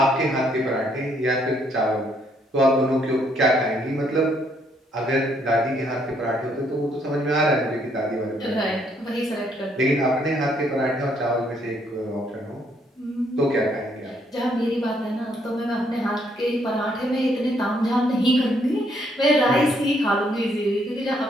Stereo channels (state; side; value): normal; both; correlation 0.70